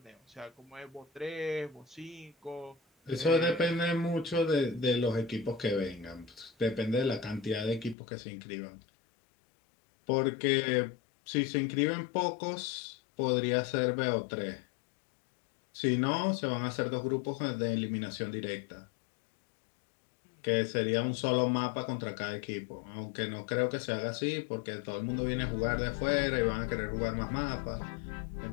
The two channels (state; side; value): drops out; right; at 8.0 s